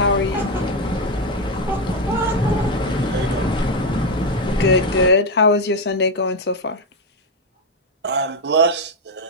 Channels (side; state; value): both; normal; correlation 0.06